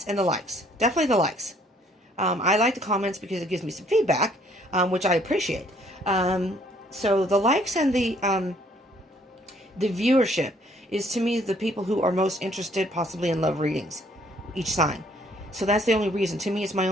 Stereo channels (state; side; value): normal; both; correlation 0.63